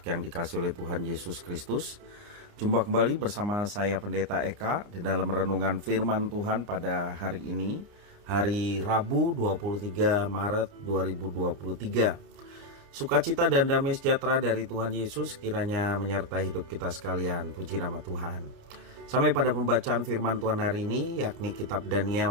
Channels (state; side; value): late; left; 29 ms